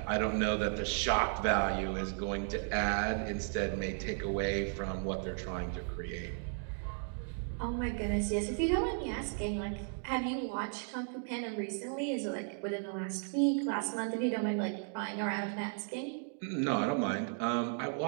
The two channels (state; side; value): silent; left; 54 dB below the other